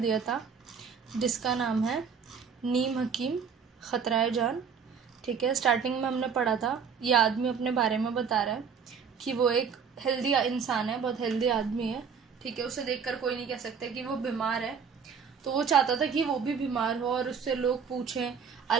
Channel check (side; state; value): left; quieter; 6.4 dB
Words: था, जिसका नाम है नीम हकीम खतराए जान, ठीक है। स्टार्टिंग में हमने पढ़ा था, ये आदमी अपने बारे में बता रहा है कि वो एक हेल्दी इंसान है, बहुत हेल्दी आदमी है, ठीक है। उसे देखकर कोई नहीं कह सकता कि वो बीमार है। तो वो चाहता था कि वो भी बीमार हो और उससे लोग पूछें,